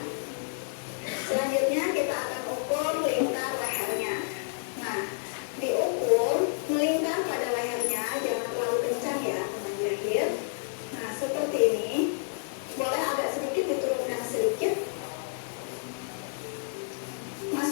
Selanjutnya kita akan ukur lingkar lehernya. Nah, diukur melingkar pada lehernya, jangan terlalu kencang ya teman jahit. Nah, seperti ini. Boleh agak sedikit diturunkan sedikit.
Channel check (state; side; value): silent; right; digital silence